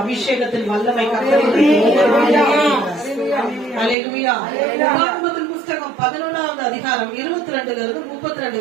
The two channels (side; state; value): left; drops out; at 4.0 s